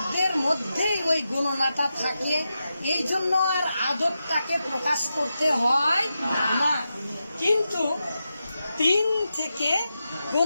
মধ্যেই ওই গণনাটা থাকে এই জন্য আর আদবটাকে প্রকাশ করতে হয় না। কিন্তু 3 থেকে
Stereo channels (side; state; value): both; inverted; correlation -0.89